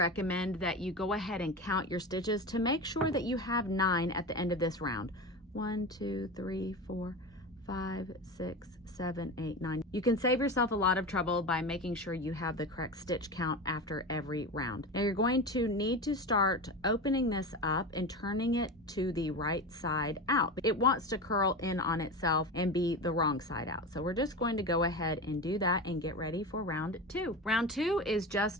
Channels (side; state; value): both; normal; correlation 0.25